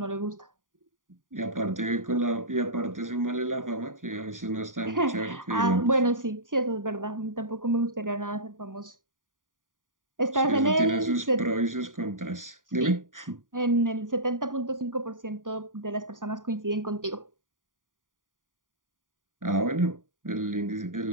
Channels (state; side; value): late; left; 0.89 ms